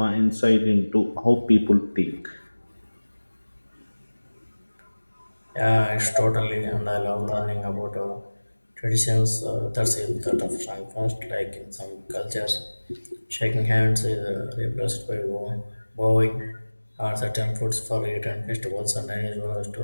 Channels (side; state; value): both; inverted; correlation -1.00